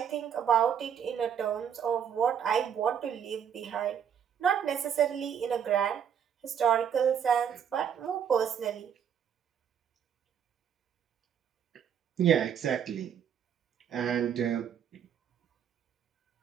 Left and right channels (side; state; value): left; quieter; 8.3 dB